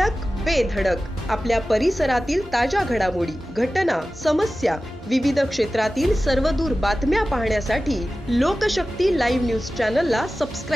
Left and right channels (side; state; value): both; normal; correlation 0.95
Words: बेधडक आपल्या परिसरातील ताज्या घडामोडी, घटना, समस्या, विविध क्षेत्रातील सर्वदूर बातम्या पाहण्यासाठी लोकशक्ती लाईव्ह न्यूज चॅनलला